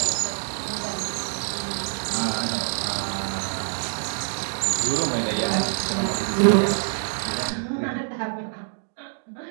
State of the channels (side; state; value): left; silent; digital silence